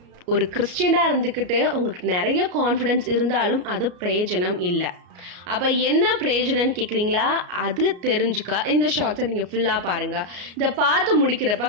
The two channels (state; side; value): late; left; 33 ms